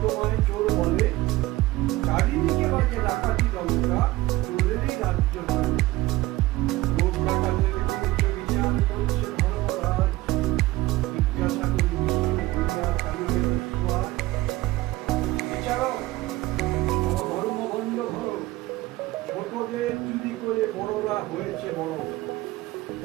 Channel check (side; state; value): left; quieter; 18.5 dB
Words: তোমায় চোর বলে। চারিদিকে বাজে ডাকাতি দলটা, চোরেরই রাজ্য নয়। লোক ডাকাতের করেছে বিচার, করছে ধর্মরাজ। জিজ্ঞাসা করি দুনিয়া কালিয়ে বিস্ময়। বিচারক, ধর্মভণ্ড ধরো। ছোটদের চুরি করে বড়রা হয়েছে বড়।